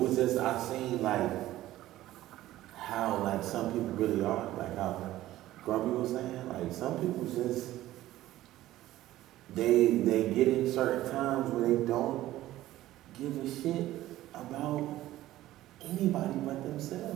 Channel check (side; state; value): left; quieter; 15.0 dB